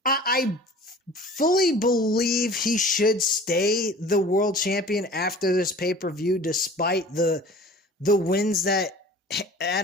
I fully believe he should stay the world champion after this pay-per-view, despite the wins that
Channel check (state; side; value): normal; both; correlation 0.44